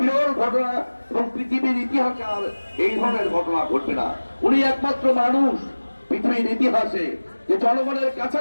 ঘটনা এবং পৃথিবীর ইতিহাসে আর এই ধরনের ঘটনা ঘটবে না। উনি একমাত্র মানুষ পৃথিবীর ইতিহাসে যে জনগণের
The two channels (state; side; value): inverted; both; correlation -1.00